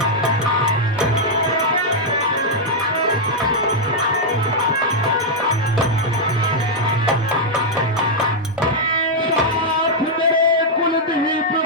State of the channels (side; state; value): both; normal; correlation -0.04